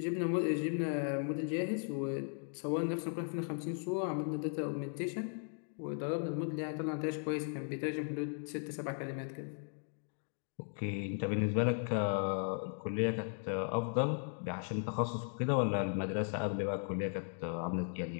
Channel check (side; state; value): right; silent; 53 dB below the other